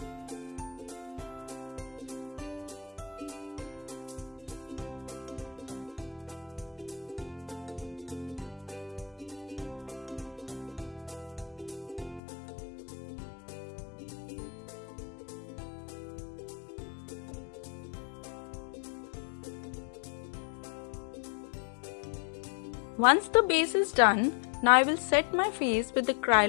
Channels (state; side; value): drops out; right; at 12.2 s